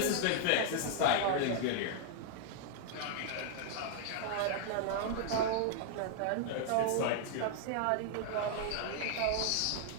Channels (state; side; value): different; both; correlation 0.00